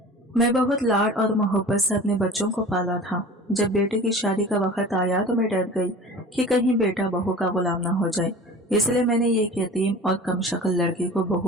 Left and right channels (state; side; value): normal; both; correlation 0.39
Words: मैं बहुत लाड और मोहब्बत से अपने बच्चों को पाला था। जब बेटे की शादी का वक्त आया तो मैं डर गई कि कहीं बेटा बहू का गुलाम ना हो जाए। इसलिए मैंने एक यतीम और कम शक्ल लड़की को